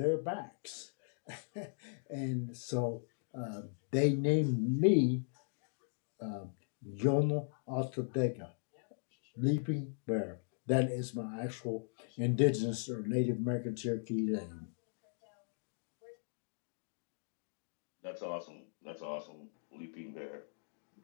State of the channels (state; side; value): silent; right; digital silence